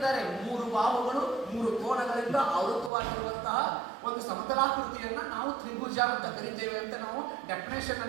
3 ಬಾಹುಗಳು 3 ಕೋಣಗಳಿಂದ ಆವೃತವಾಗಿರುವಂತಹ ಒಂದು ಸಮತಲಾಕೃತಿಯನ್ನ ನಾವು ತ್ರಿಭುಜ ಅಂತ ಕರಿತೇವೆ ಅಂತ ನಾವು ಡೆಫಿನೇಷನ್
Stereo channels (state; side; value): drops out; left; at 2.9 s